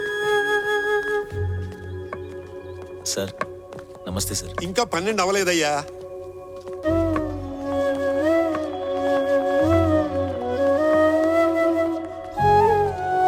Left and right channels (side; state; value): both; identical; correlation 1.00